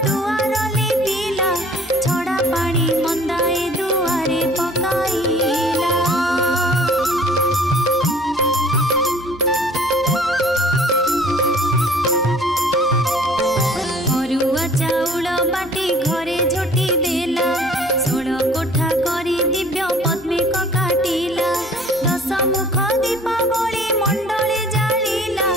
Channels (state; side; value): normal; both; correlation 0.51